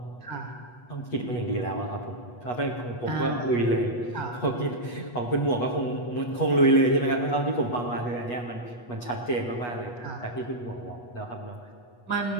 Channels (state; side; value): late; right; 8.2 ms